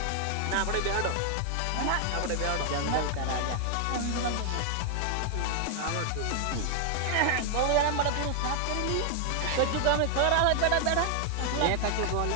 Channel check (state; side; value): different; both; correlation 0.00